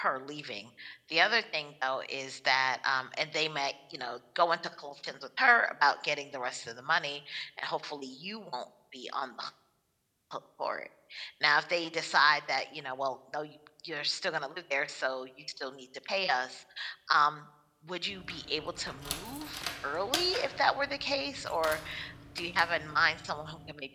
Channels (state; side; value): identical; both; correlation 1.00